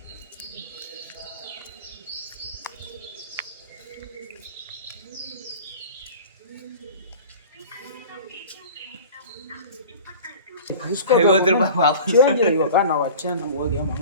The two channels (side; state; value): both; inverted; correlation -0.40